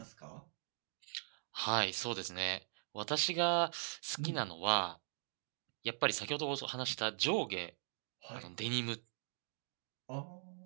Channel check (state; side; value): silent; left; digital silence